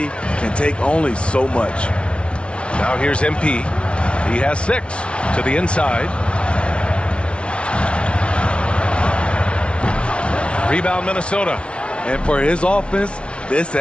can take only so much. Now here's MP. He has 6 to the inside. Rebound Minnesota. And for his offense, this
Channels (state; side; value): late; right; 0.059 ms